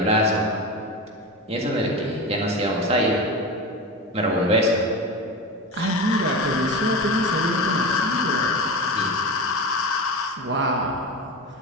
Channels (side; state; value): both; normal; correlation 0.24